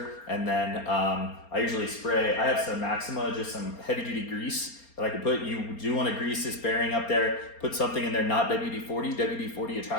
and then I usually spray, I have some Maxima, just some heavy duty grease that I can put. You do want to grease this bearing up there, put something in there, not WD-40. WD-40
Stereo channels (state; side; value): late; right; 4.3 ms